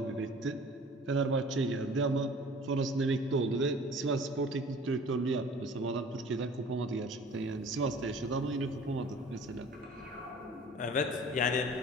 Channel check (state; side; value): normal; both; correlation 0.46